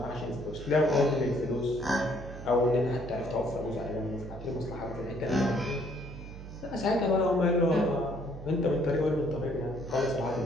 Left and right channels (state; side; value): noise; right; hum, 12 dB below the sound